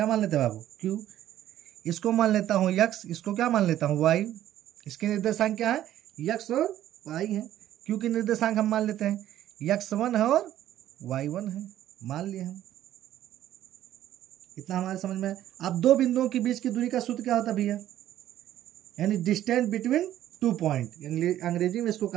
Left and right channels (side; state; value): left; quieter; 12.5 dB